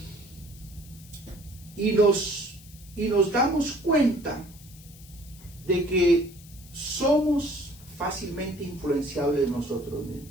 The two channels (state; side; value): noise; left; hiss, 21 dB below the sound